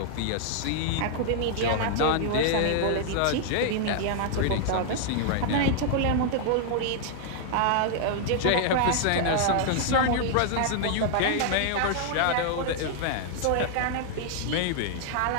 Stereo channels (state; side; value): different; both; correlation -0.01